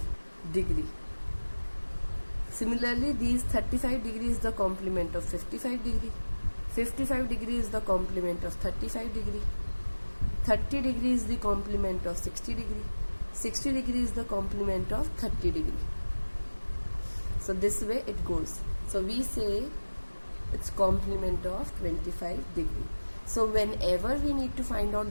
degree. Similarly, these 35 degree is the complement of 55 degree. 55 degree is the complement of 35 degree. 30 degree is the complement of 60 degree. 60 degree is the complement of 30 degree. So this way it goes. So we say it's complement of 25 degree. So whenever we need to find out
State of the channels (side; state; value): both; inverted; correlation -1.00